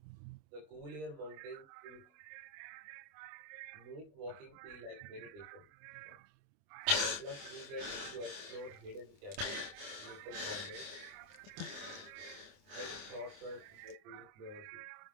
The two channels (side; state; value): left; late; 28 ms